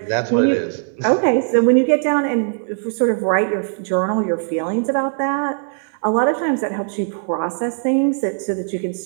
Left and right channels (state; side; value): silent; left; 60 dB below the other